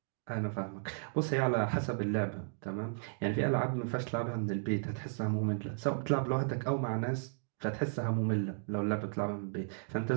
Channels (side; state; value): left; silent; digital silence